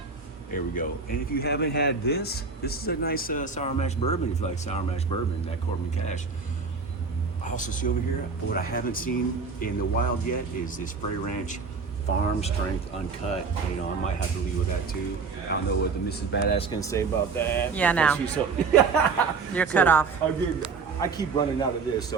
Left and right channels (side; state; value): left; quieter; 4.8 dB